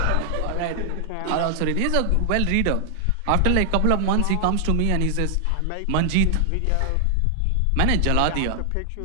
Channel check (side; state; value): both; different; correlation 0.00